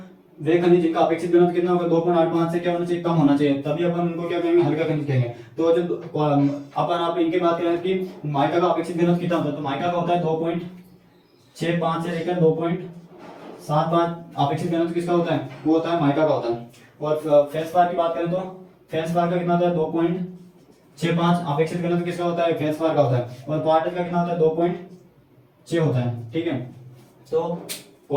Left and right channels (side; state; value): both; identical; correlation 1.00